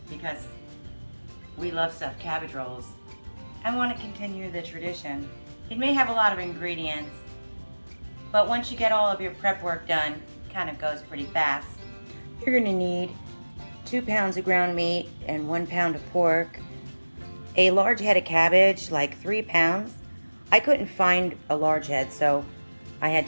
because we love stuffed cabbage rolls. I want to continue the tradition. It may have a lot of ingredients, but once you get all of your prep work done, it kind of goes pretty fast. You're going to need 2 pounds of ground meat and 1 pound of pork, a large head of cabbage, like 3 pounds. I couldn't find a large head, so I had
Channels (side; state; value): both; inverted; correlation -1.00